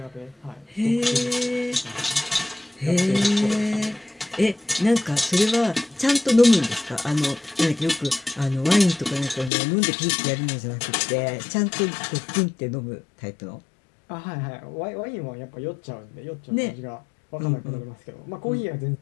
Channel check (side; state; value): right; drops out; at 9.5 s